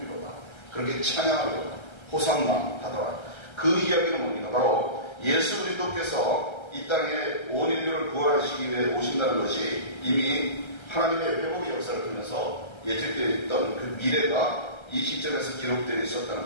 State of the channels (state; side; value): late; right; 1.3 ms